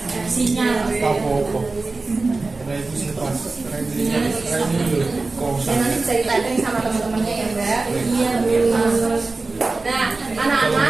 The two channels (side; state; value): left; quieter; 3.6 dB